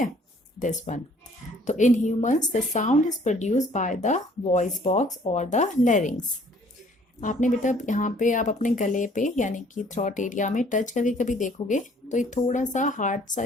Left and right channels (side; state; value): both; normal; correlation 0.58